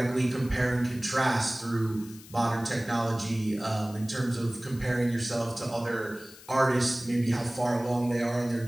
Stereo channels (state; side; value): noise; left; hiss, 20 dB below the sound